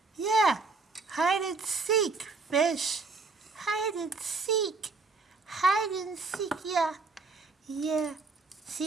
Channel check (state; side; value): quieter; left; 4.0 dB